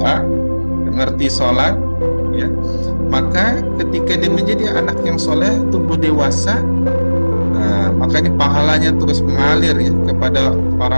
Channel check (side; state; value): both; inverted; correlation -1.00